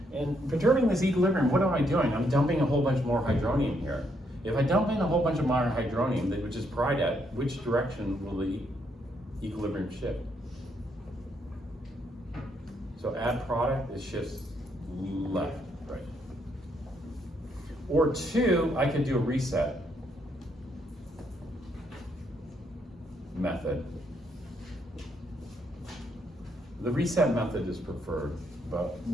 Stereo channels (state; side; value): normal; both; correlation 0.74